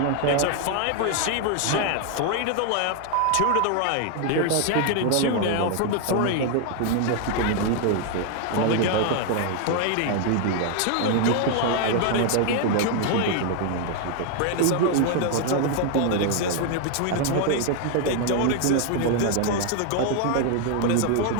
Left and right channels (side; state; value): both; different; correlation 0.00